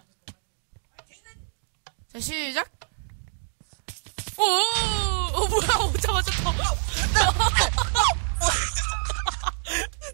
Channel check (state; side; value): silent; left; digital silence